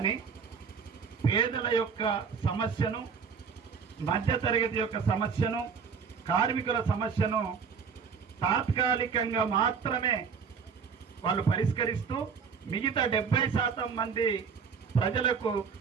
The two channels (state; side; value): quieter; left; 6.1 dB